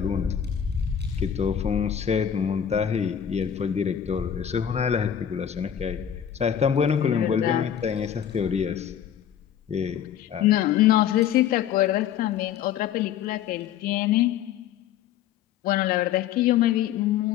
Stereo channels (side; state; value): right; quieter; 9.4 dB